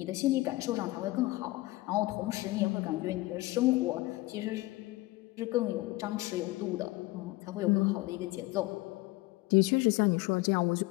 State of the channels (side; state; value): right; quieter; 20.3 dB